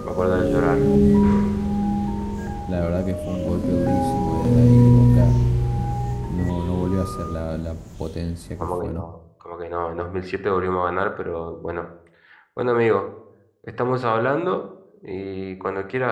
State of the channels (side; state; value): both; identical; correlation 1.00